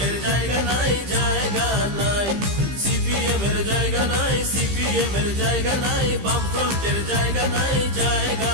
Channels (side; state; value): left; late; 15 ms